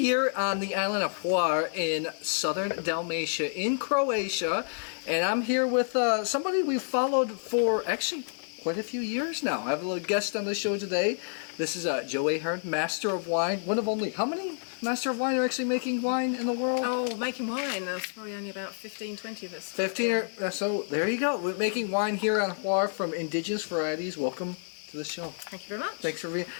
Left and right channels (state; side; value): silent; right; digital silence